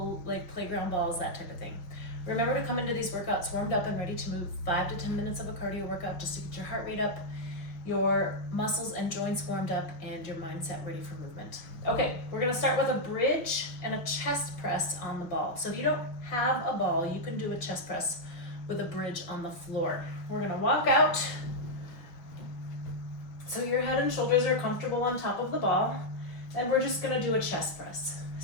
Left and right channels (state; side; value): late; right; 5.8 ms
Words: like playground balls, that type of thing. Remember to come into these workouts warmed up and ready to move. 5 to 10 minutes of a cardio workout just to get your heart rate up, your muscles and joints warmed up, and your mindset ready for movement. Okay, we're gonna start with a bridge and a chest press on the ball. So if you don't have a ball, you can do a chest press with a bridge on the floor. We're gonna walk out so your head and shoulders are comfortable on top of the ball, and we're just gonna do a chest press.